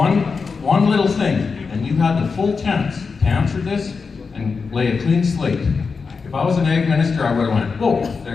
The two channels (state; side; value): quieter; right; 5.0 dB